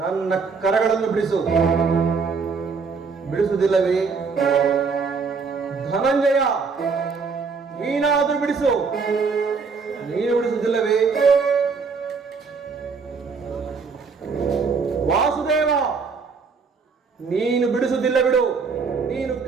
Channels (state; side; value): quieter; left; 5.0 dB